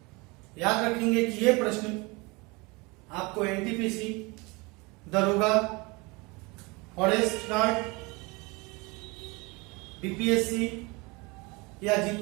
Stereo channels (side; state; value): left; quieter; 26.2 dB